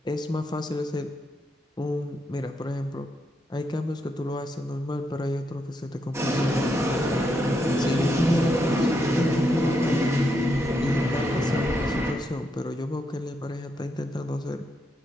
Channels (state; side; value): normal; both; correlation 0.81